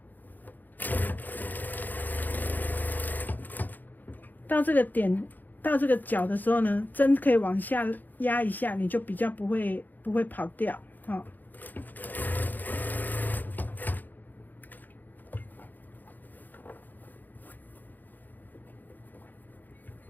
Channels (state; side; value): late; right; 0.086 ms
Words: 到这个点，到这个角的时候呢，针可以往下压一下，你就比较不会跑掉